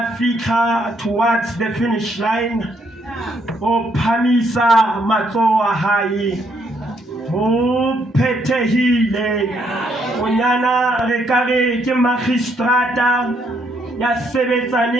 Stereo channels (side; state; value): both; normal; correlation 0.72